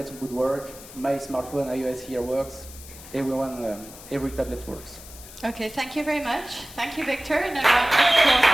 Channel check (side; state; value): left; noise; hiss, 17 dB below the sound